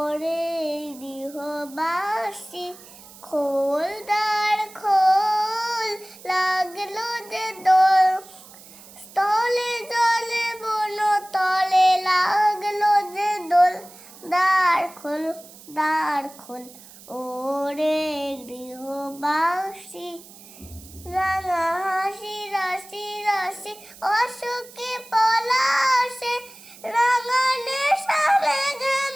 গৃহবাসী খোল দ্বার খোল, লাগলো যে দোল, স্থলে জলে বন তলে লাগলো যে দোল। দ্বার খোল দ্বার খোল, ওরে গৃহবাসী। রাঙা হাসি রাশি রাশি অশোকে পলাশে, রাঙা নেশা মেঘে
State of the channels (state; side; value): noise; right; hiss, 20 dB below the sound